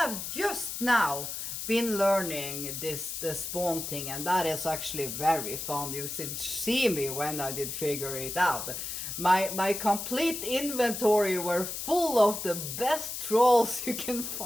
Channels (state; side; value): noise; left; hiss, 6 dB below the sound